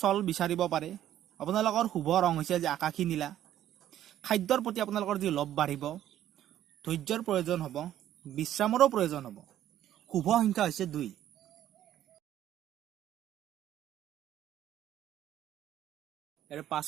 বিচাৰিব পাৰে। আপোনালোকৰ শুভ ৰং হৈছে আজি আকাশী নীলা। খাদ্যৰ প্ৰতি আপোনালোকৰ যি লোভ বাঢ়িব। ধৈৰ্যৰ প্ৰয়োজন হ'ব। বিশ্ৰামৰো প্ৰয়োজন হ'ব। শুভ সংখ্যা হৈছে 2। ইয়াৰ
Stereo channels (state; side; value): quieter; left; 11.9 dB